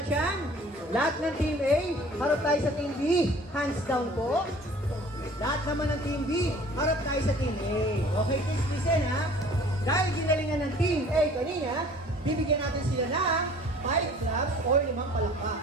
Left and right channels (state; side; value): normal; both; correlation 0.50